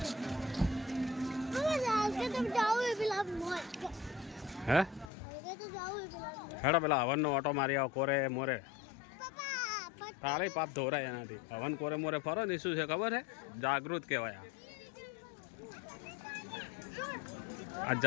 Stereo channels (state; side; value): drops out; right; at 5.1 s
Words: है हेड़ा पेला हवन नो ऑटो मारी आओ कोरे मोरे तारे पाप धोरा एना थी हवन कोरे मोरे फरो ने शू छे खबर है जागृत कहवाया आ